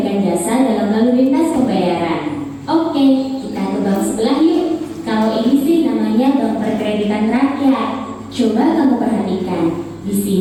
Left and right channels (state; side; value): identical; both; correlation 1.00